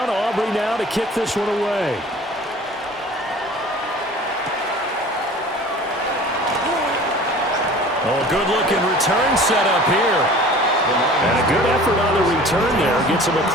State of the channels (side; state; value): both; normal; correlation 0.44